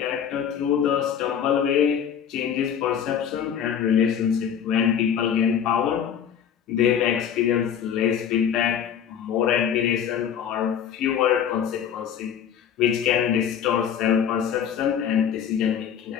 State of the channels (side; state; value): right; quieter; 8.5 dB